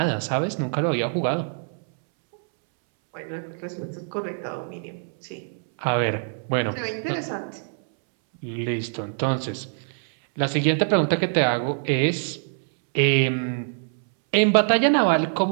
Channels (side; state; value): left; silent; 62 dB below the other